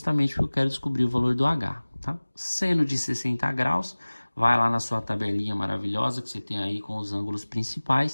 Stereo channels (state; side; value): inverted; both; correlation -1.00